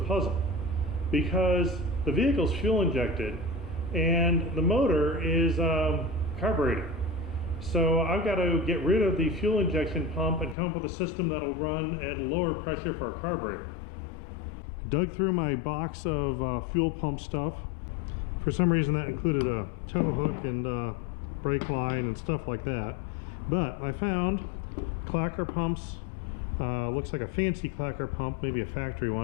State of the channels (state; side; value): drops out; right; at 10.6 s